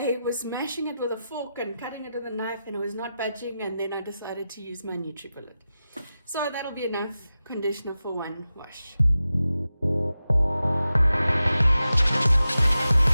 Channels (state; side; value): inverted; both; correlation -0.92